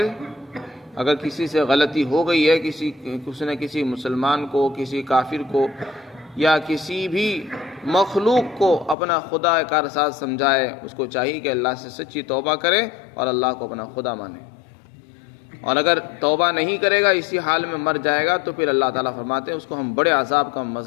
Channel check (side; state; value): right; drops out; at 9.0 s